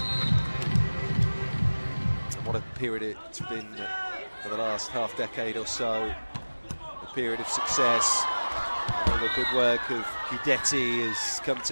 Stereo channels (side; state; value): both; inverted; correlation -1.00